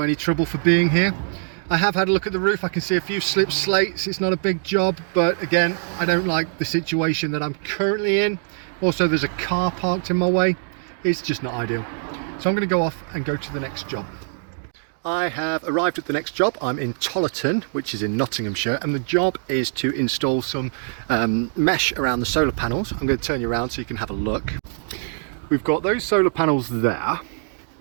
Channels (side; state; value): left; silent; digital silence